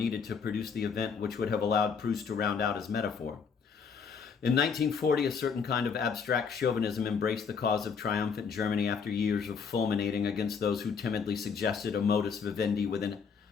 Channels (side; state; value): right; quieter; 6.1 dB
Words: to produce the event which would have allowed Proust to round out his metaphor. In 1940, a certain kind of abstract chauvinism embraced the cause of triumphant Germany after years of fulminating against those who timidly suggested a modus vivendi with